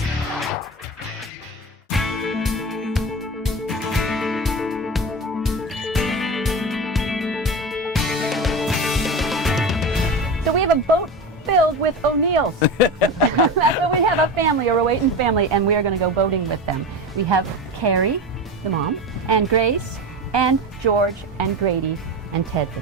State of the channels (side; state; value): both; normal; correlation 0.25